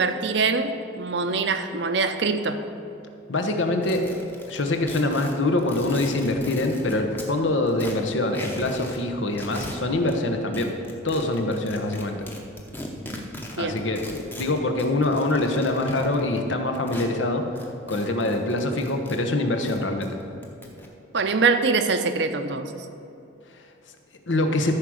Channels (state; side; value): normal; both; correlation 0.27